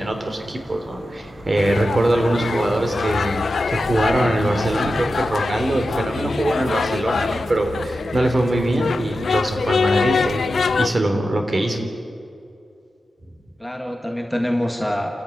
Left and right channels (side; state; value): both; normal; correlation 0.91